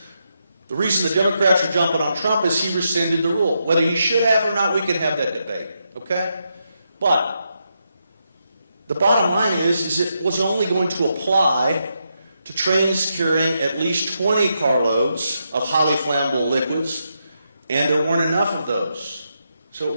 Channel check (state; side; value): inverted; both; correlation -0.83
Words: the reason the Democrats are jumping on Trump is he rescinded the rule. Whether he should have or not, we can have that debate, okay? But the bottom line is it was only going to apply to trains carrying at least 20 carloads of highly flammable liquids, and there weren't enough of those. So it